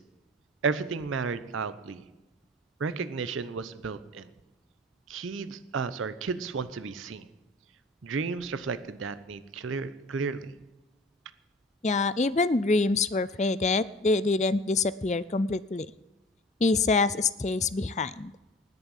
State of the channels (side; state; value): both; normal; correlation 0.42